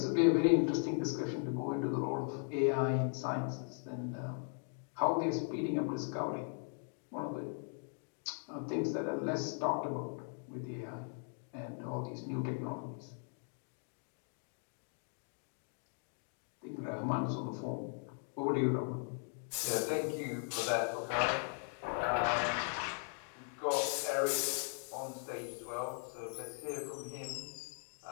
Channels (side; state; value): right; silent; 52 dB below the other